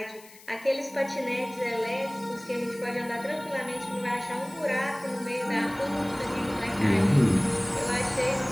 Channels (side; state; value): left; noise; hiss, 22 dB below the sound